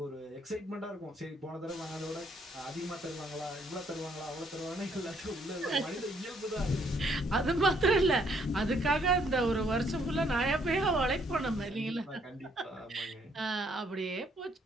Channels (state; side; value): normal; both; correlation 0.68